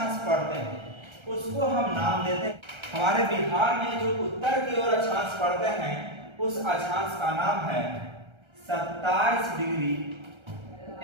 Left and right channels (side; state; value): left; late; 1.3 ms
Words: पड़ते हैं उसको हम नाम देते हैं, हमारे बिहार में जो उत्तर की ओर अक्षांश पड़ते हैं उस अक्षांश का नाम है 27 डिग्री